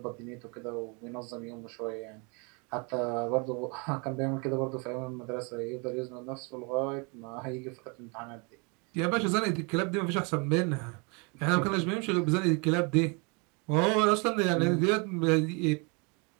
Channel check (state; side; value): quieter; left; 32.2 dB